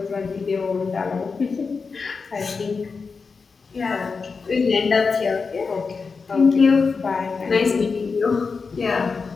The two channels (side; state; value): right; quieter; 4.8 dB